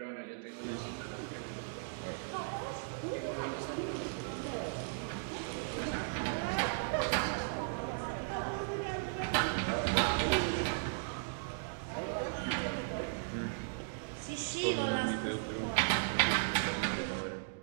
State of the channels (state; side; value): silent; left; digital silence